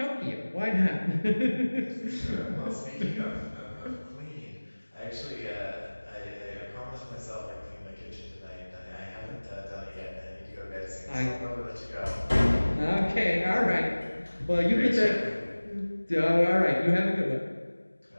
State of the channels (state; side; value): inverted; both; correlation -1.00